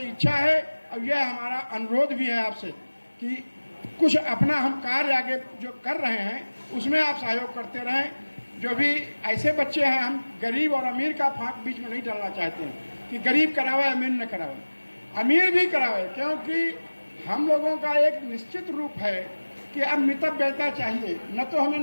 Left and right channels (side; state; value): both; inverted; correlation -1.00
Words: इच्छा है और यह हमारा अनुरोध भी है आपसे कि कुछ अपना हम कार्य आगे जो कर रहे हैं उसमें आप सहयोग करते रहें। जो भी ऐसे बच्चे हैं, हम गरीब और अमीर का फांक बीच में नहीं डालना चाहते हैं कि गरीब करावे अमीर न करावे, अमीर भी करावे, क्योंकि हम लोगों का एक निश्चित रूप है कि अब मितव्ययता चाहिए। न तो हमें